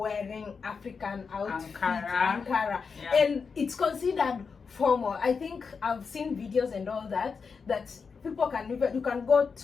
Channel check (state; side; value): quieter; right; 5.4 dB